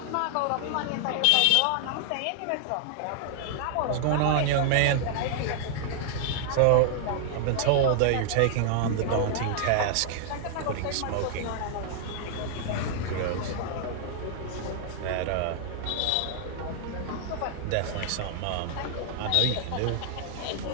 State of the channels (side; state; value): both; different; correlation 0.00